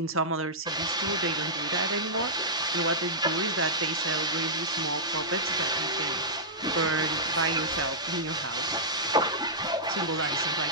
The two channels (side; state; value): both; normal; correlation -0.12